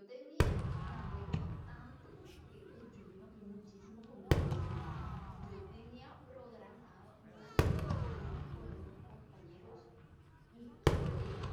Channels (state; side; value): identical; both; correlation 1.00